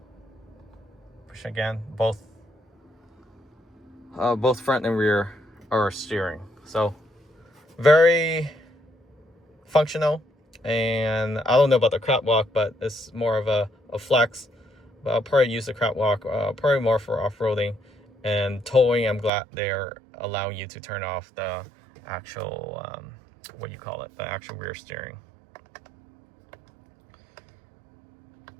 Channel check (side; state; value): left; drops out; at 19.3 s